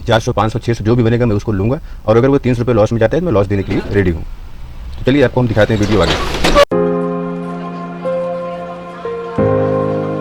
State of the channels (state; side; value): identical; both; correlation 1.00